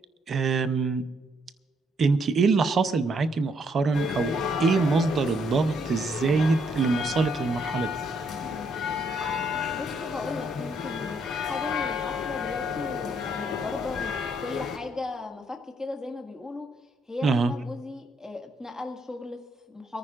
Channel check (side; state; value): both; normal; correlation 0.72